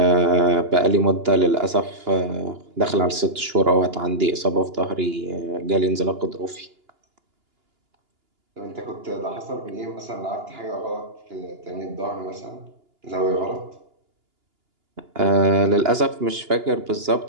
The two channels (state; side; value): late; left; 2.9 ms